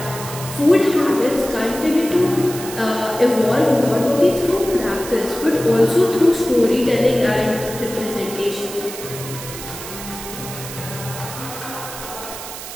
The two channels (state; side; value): noise; right; hiss, 11 dB below the sound